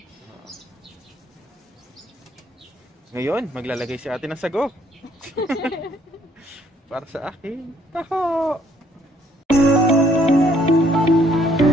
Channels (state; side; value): normal; both; correlation 0.66